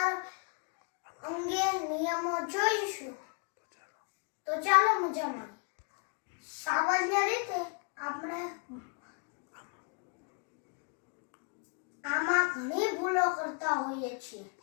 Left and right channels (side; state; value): right; quieter; 39.8 dB